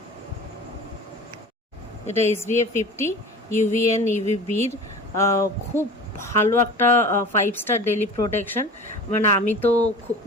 এটা SPF 50 UVN UVBর খুব ভালো একটা 5 স্টার ডেলি প্রোটেকশন। মানে আমি তো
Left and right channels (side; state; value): both; normal; correlation 0.37